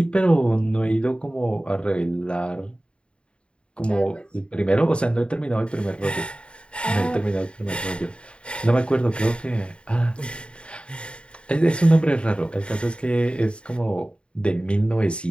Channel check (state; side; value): late; right; 0.055 ms